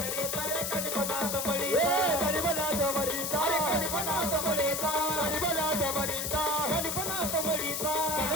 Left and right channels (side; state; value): left; noise; hiss, 2 dB below the sound